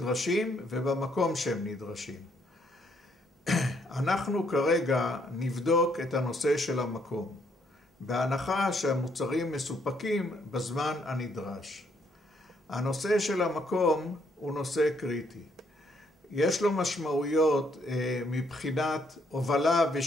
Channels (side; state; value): both; normal; correlation 0.70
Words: ובמקום שהם נדרשים. אנחנו כרגע נבדוק את הנושא של המקום, בהנחה שהמוצרים מסופקים בזמן הנדרש. הנושא של המקום הוא נושא קריטי. יש לו משמעויות מבחינת הובלה